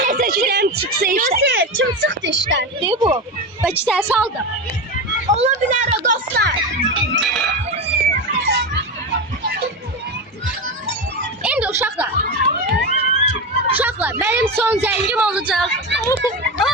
seçirəm çıxsa işte. Kim çıxdı işdən? Ne bu? Belki sen saldın. Ola bilər o dostlar. Şimdi uşaqlar. Uşaqlar, benim son zəngim olacaq.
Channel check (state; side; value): normal; both; correlation 0.18